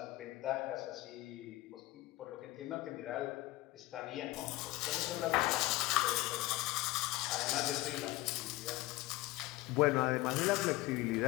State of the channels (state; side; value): quieter; right; 19.1 dB